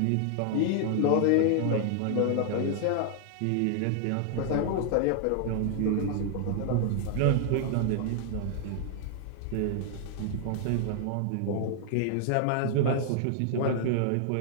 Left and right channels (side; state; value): both; different; correlation 0.00